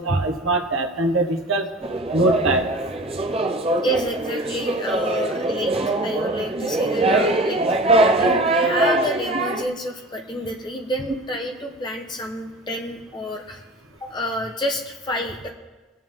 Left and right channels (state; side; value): normal; both; correlation 0.38